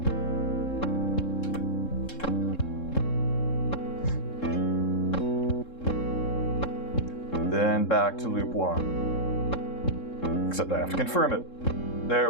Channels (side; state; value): right; late; 3.7 ms